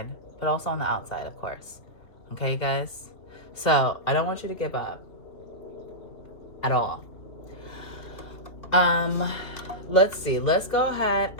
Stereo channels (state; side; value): late; right; 2.8 ms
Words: but also on the outside, of course. Okay, guys? So I don't want you to give up at all. Let's see. Let's go ahead